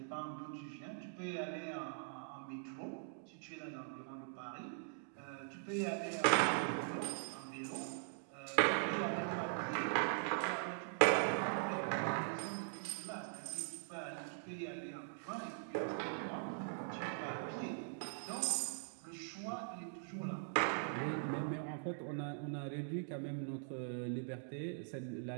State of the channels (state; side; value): silent; left; digital silence